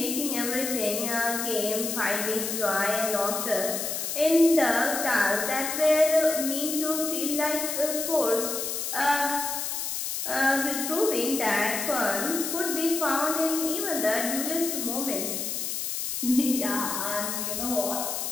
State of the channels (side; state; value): left; noise; hiss, 3 dB below the sound